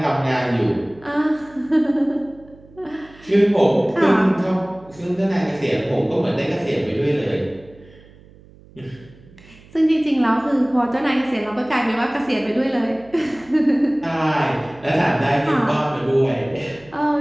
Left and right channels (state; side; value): noise; right; hum, 24 dB below the sound